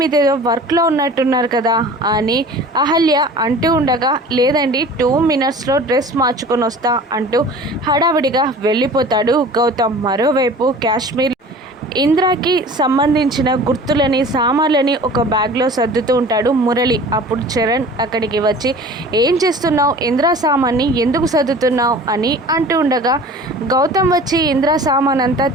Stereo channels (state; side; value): normal; both; correlation 0.43